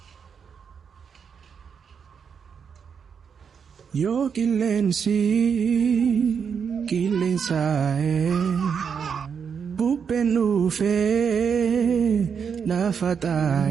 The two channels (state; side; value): quieter; left; 6.7 dB